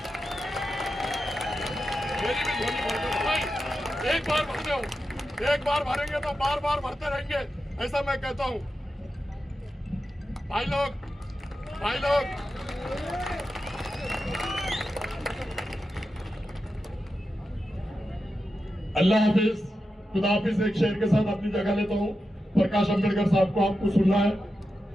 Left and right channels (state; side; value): normal; both; correlation 0.90